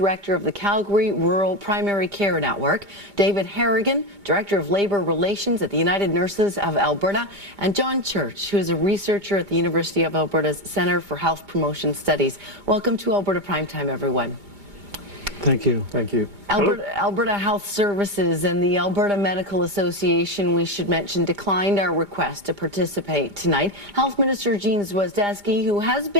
of the Calgary Rural Primary Care Network, David Harrigan, Director of Labour Relations at the United Nurses of Alberta, and John Church, who is a researcher at the University of Alberta's Centre for Health Promotion Studies. Welcome to Alberta Primetime, everyone. Thank you. Thank you. Alberta Health Services and the Alberta Medical Association, we should mention, declined our request to participate tonight. Health Minister Jean Swizdesky, who has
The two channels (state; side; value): late; left; 2.2 ms